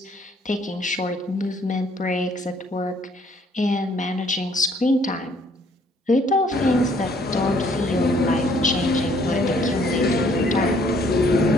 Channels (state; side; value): normal; both; correlation 0.63